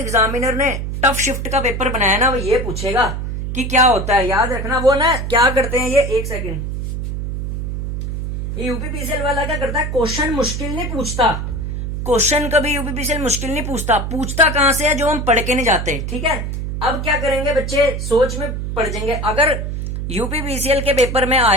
ने टफ शिफ्ट का पेपर बनाया ना, वो ये पूछेगा कि क्या होता है। याद रखना, वो ना क्या करते हैं, ये एक सेकंड, ये यूपीपीसीएल वाला क्या करता है, क्वेश्चन मुश्किल नहीं पूछता। क्वेश्चन कभी यूपीपीसीएल मुश्किल नहीं पूछता कहां से है, जो हम पढ़ के नहीं जाते। ठीक है, अब क्या करेंगे बच्चे, सोच में पड़ जाएंगे। अगर यूपीपीसीएल के पेपर में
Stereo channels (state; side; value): noise; right; hum, 4 dB below the sound